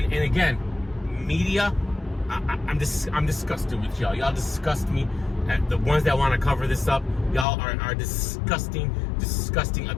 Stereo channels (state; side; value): drops out; right; at 7.5 s